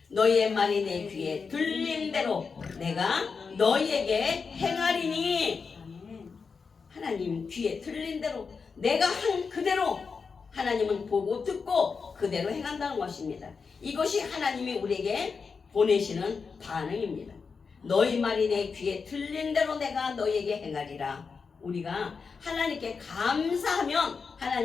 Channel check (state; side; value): quieter; right; 5.2 dB